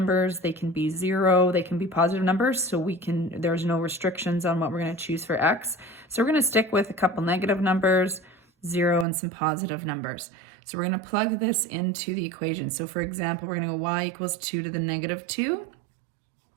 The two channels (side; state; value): left; drops out; at 9.1 s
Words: they can be 0, they can be positive numbers, so there's no restrictions on what we're going to choose for x. So we're going to stick with a couple negative numbers, 0, and some positive numbers. So we're going to plug this into the equation. So for example, we're going to go y equals 2 to the negative 2.